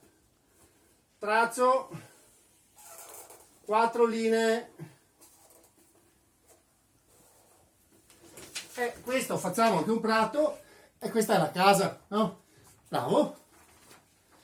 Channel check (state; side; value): identical; both; correlation 1.00